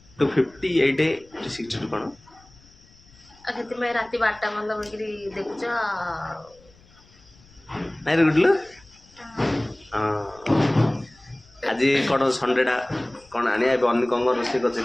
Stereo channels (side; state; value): left; noise; rumble, 27 dB below the sound